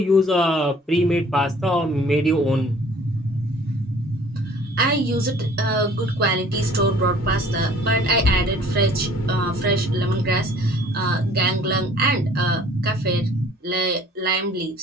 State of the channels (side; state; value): both; normal; correlation 0.53